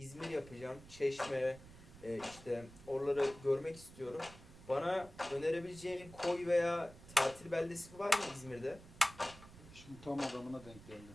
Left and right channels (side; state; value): right; noise; rumble, 18 dB below the sound